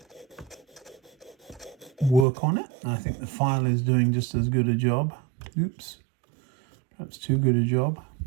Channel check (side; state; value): left; drops out; at 2.2 s